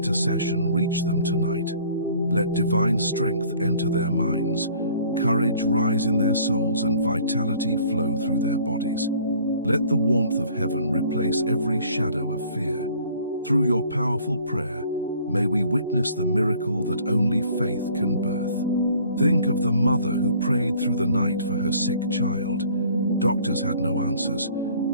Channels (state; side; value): inverted; both; correlation -0.54